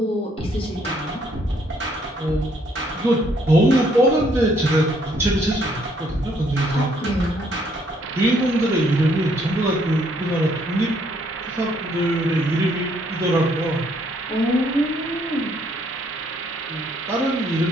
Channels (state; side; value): normal; both; correlation 0.67